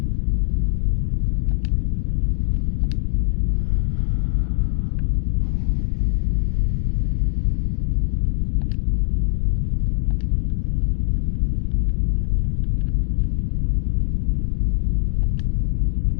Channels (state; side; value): silent; right; digital silence